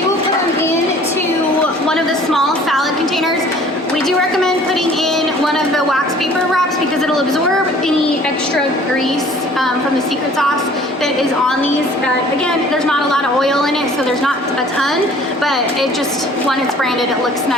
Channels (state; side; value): normal; both; correlation 0.52